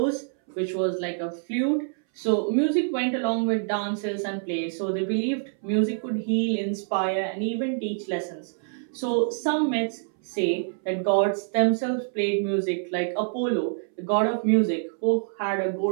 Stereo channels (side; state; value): left; silent; 61 dB below the other